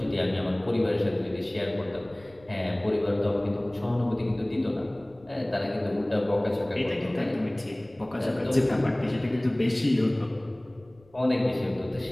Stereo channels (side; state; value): left; noise; rumble, 28 dB below the sound